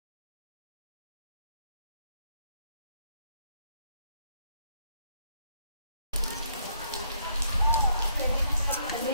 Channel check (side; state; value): both; inverted; correlation -0.71